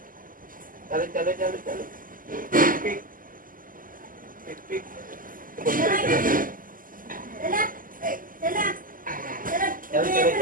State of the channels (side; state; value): left; late; 0.41 ms